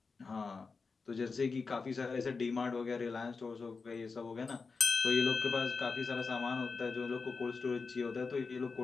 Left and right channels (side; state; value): right; quieter; 4.6 dB